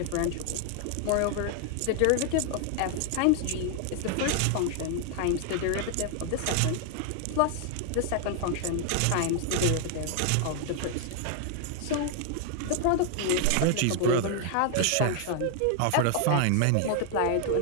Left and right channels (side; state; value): both; different; correlation 0.00